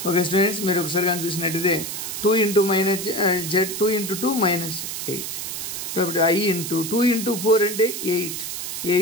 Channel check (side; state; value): right; noise; hiss, 5 dB below the sound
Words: Okay students, మీరు ఒకసారి కానీ చూసినట్టయితే 2 into minus z 2 into 2 minus 8. కాబట్టి I into 2 into 4 అంటే